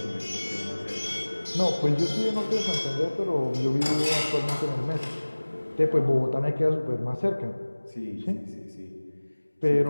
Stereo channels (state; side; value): inverted; both; correlation -1.00